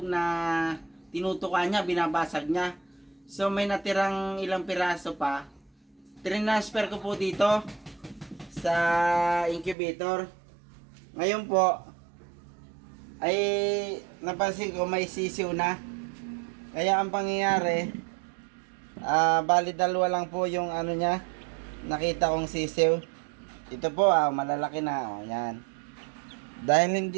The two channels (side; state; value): left; drops out; at 9.8 s